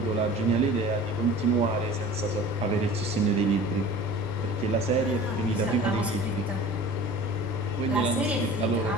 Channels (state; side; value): normal; both; correlation 0.41